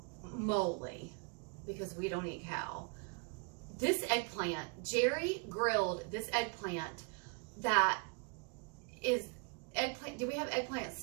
moly, because we don't eat cow. This eggplant, Jerry grilled this eggplant that is eggplant. Did we have eggplant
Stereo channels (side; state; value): left; quieter; 36.3 dB